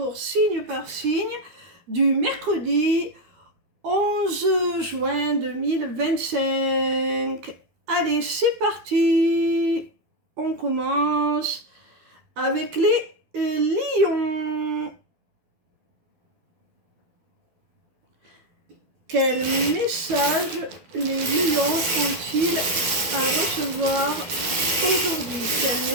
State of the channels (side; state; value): left; late; 12 ms